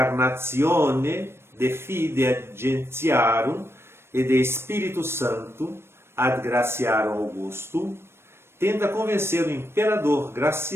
De Fide Gentiarum e De Espírito Santo ad Graciarum Augustum, tenta convencer o imperador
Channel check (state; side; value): late; left; 0.12 ms